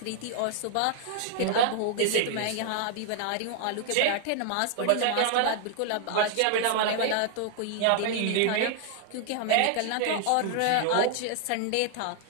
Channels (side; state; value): both; different; correlation 0.00